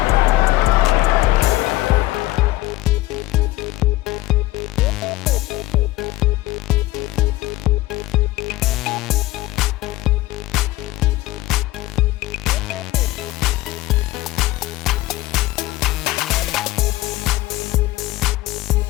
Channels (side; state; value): right; quieter; 17.6 dB